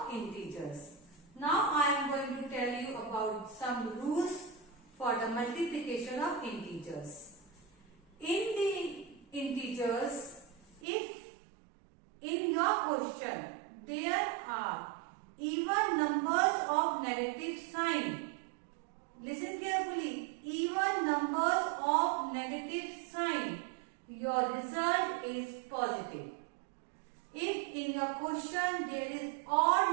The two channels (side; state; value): left; drops out; at 10.8 s